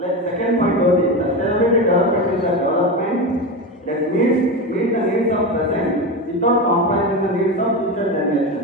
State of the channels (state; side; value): normal; both; correlation 0.20